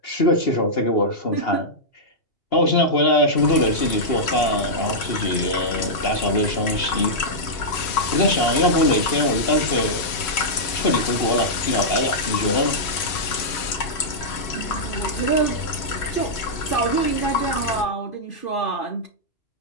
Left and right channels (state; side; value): late; right; 3.0 ms